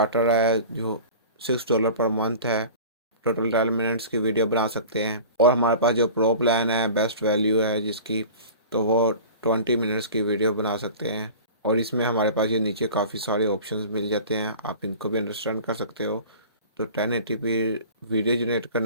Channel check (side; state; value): both; inverted; correlation -0.39